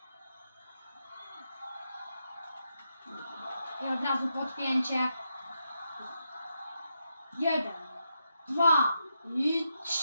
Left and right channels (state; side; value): inverted; both; correlation -0.84